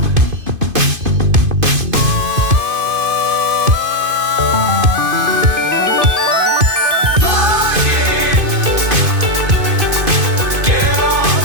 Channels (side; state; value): left; late; 2.5 ms